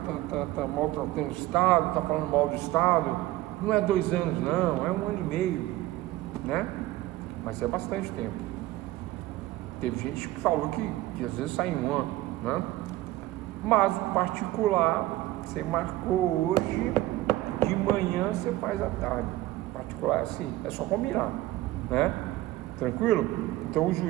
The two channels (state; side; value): quieter; left; 16.6 dB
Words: está maltratando o Estado, está falando mal do Estado. Não é 2 anos não, é 1 ano e meio, né? Mas é bastante tempo. Teve gente que falou que às vezes sai em 1 ano, né? Mas o particular, você marcou hoje, de manhã você faz à tarde. O particular é assim, é só combinar, né? Tranquilo? Então o